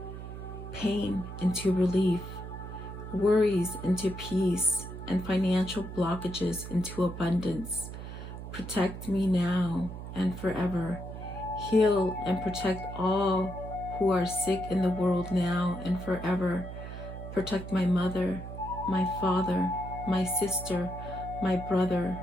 pain into relief, worries into peace, and financial blockages into abundance. Protect me now and forever. Heal and protect all who are sick in the world now and forever. Protect my mother, my father, my sister, my brother,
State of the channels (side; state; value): right; noise; hum, 10 dB below the sound